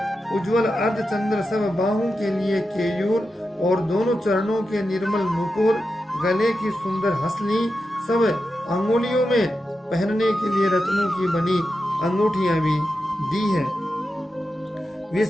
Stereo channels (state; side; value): normal; both; correlation 0.90